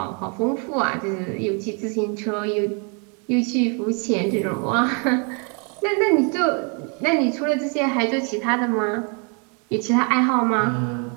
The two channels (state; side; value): quieter; left; 36.7 dB